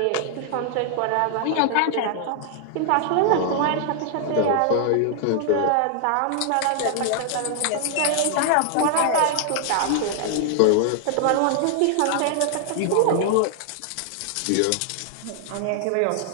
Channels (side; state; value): both; different; correlation 0.00